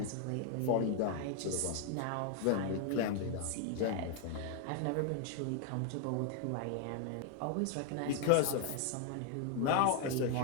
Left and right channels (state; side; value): different; both; correlation 0.00